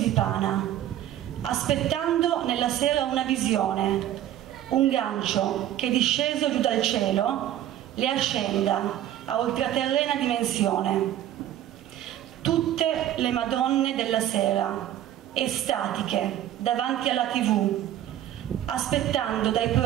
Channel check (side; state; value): left; quieter; 12.1 dB